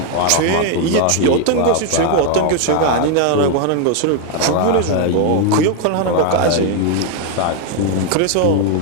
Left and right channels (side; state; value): both; different; correlation 0.01